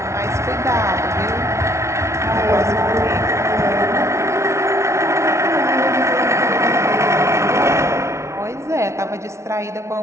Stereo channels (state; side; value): late; left; 0.13 ms